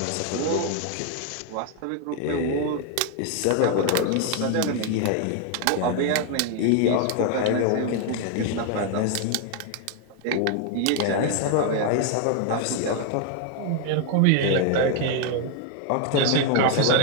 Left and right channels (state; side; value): different; both; correlation 0.01